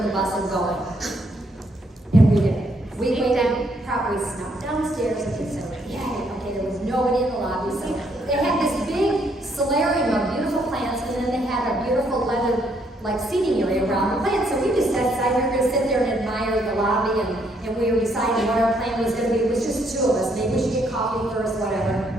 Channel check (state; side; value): normal; both; correlation 0.71